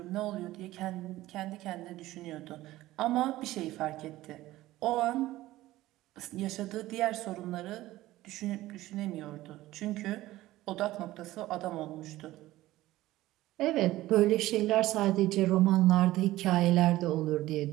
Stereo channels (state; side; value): quieter; left; 16.4 dB